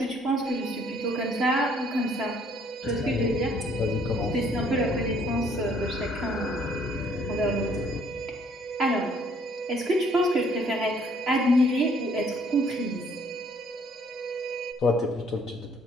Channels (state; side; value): normal; both; correlation 0.62